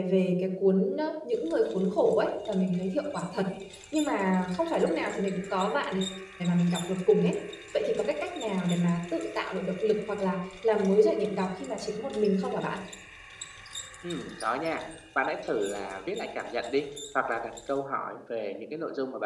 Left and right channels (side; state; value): both; identical; correlation 1.00